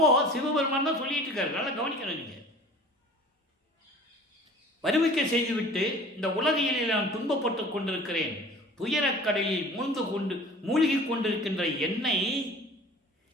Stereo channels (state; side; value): normal; both; correlation 0.44